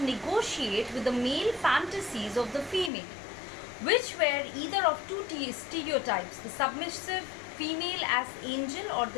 negotiate with the male fantasies of the female, which were either of two stereotypes, the submissive female as angel or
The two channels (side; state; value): right; drops out; at 2.9 s